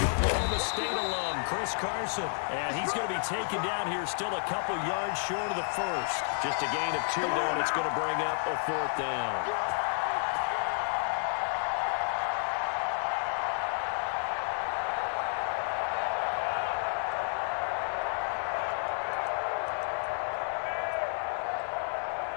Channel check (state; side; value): silent; right; digital silence